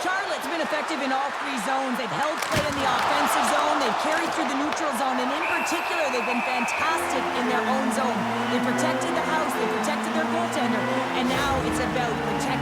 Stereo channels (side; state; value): both; identical; correlation 1.00